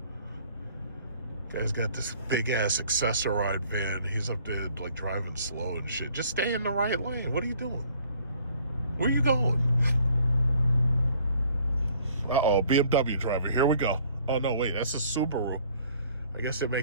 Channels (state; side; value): inverted; both; correlation -0.58